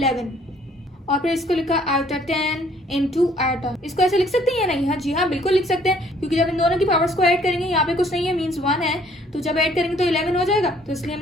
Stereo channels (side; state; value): both; normal; correlation 0.61